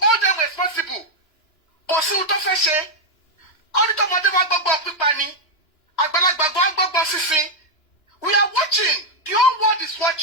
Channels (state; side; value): late; right; 2.9 ms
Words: hold them responsible. We are watching, the whole world is